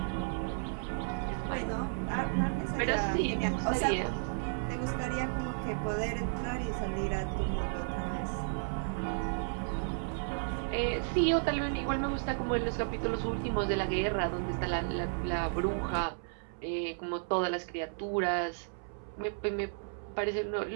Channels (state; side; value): silent; left; 55 dB below the other